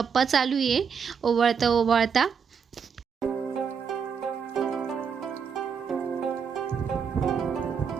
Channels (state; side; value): quieter; left; 6.5 dB